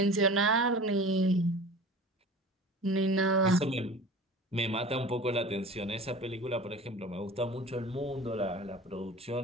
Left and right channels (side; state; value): both; normal; correlation 0.39